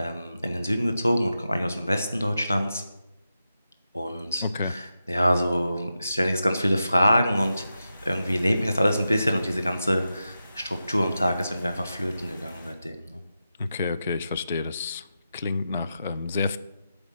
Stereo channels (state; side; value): inverted; both; correlation -0.90